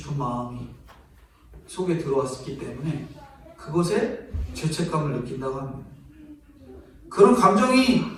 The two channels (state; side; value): identical; both; correlation 1.00